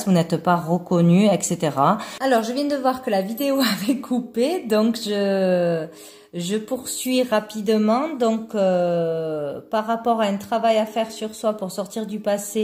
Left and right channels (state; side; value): identical; both; correlation 1.00